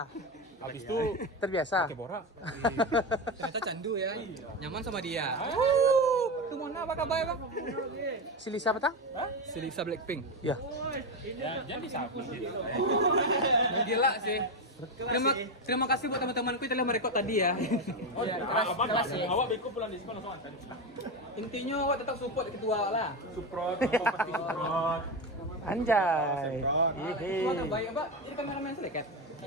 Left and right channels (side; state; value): both; normal; correlation 0.14